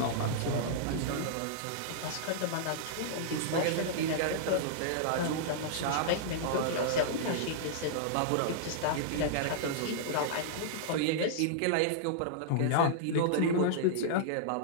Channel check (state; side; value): different; both; correlation -0.02